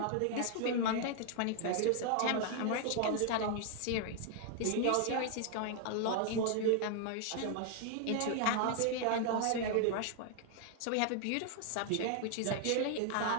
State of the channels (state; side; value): different; both; correlation 0.00